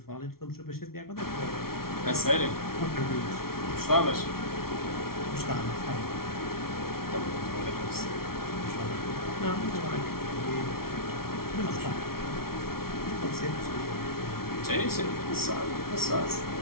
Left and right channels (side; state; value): right; late; 0.94 ms